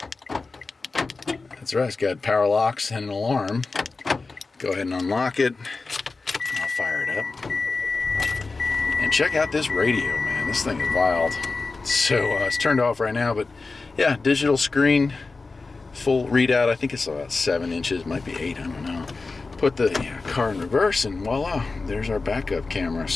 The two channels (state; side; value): quieter; right; 3.9 dB